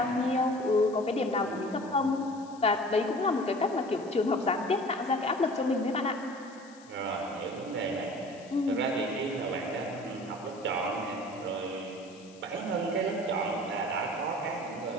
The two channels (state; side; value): noise; left; hiss, 24 dB below the sound